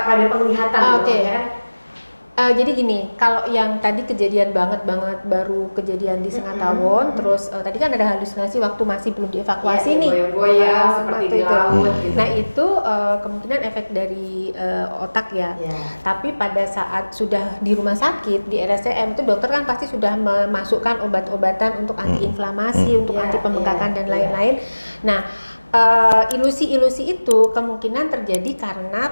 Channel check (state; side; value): inverted; both; correlation -1.00